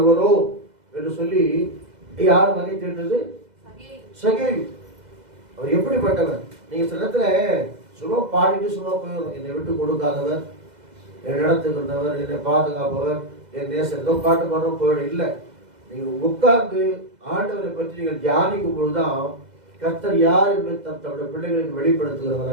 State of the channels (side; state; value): left; late; 2.0 ms